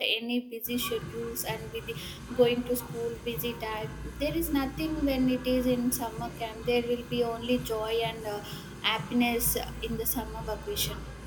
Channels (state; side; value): identical; both; correlation 1.00